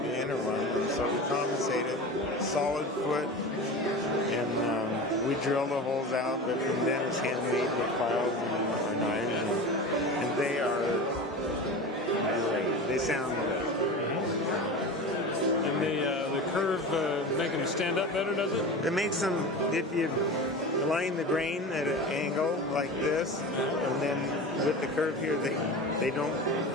the inner one, and so we compensate it. Solid foot, and we drill the holes out, but from then it's handmade with files and knives, and they are great. They sound great. And the curve make them stand up better, does it? It makes them, if you line the grain at an angle like this, and then with the curve here, they don't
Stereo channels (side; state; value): both; normal; correlation 0.30